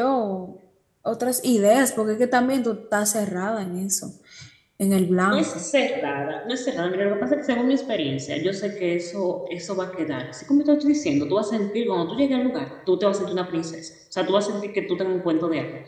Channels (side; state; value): both; identical; correlation 1.00